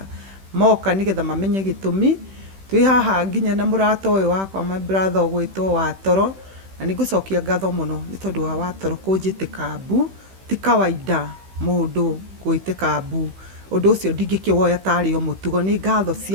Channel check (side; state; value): left; late; 16 ms